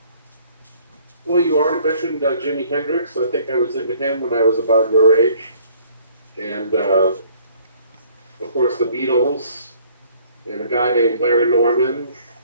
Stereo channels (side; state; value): both; inverted; correlation -0.58